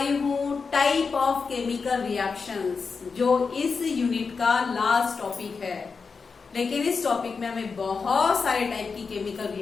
हूँ टाइप ऑफ केमिकल रिएक्शंस, जो इस यूनिट का लास्ट टॉपिक है। लेकिन इस टॉपिक में हमें बहुत सारे टाइप की केमिकल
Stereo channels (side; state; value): right; quieter; 5.0 dB